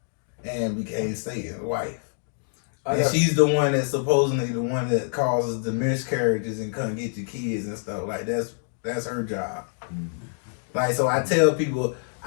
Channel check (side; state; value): right; silent; 57 dB below the other